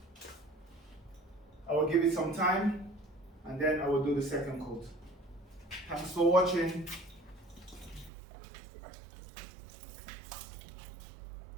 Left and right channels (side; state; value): left; drops out; at 8.1 s